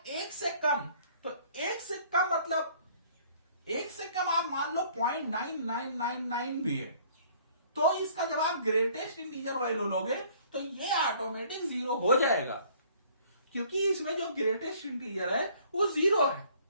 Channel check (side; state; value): both; inverted; correlation -0.57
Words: 1 से कम। तो 1 से कम मतलब 1 से कम आप मान लो 0.9999 भी है, तो इसका जब आप ग्रेटेस्ट इंटीजर वैल्यू लोगे तो ये ऑटोमेटिक 0 हो जाएगा, क्योंकि इसमें जो ग्रेटेस्ट इंटीजर है वो 0 है।